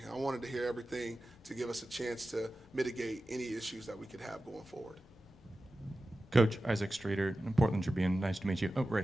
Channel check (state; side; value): normal; both; correlation 0.94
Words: I wanted to hear everything to give us a chance to mitigate any issues that we could have going forward. Coach, Isaac Streeter in Portland Tribune. Nice to meet you. Oh, right